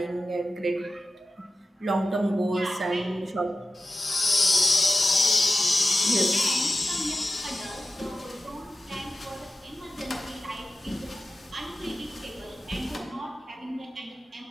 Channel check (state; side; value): normal; both; correlation 0.93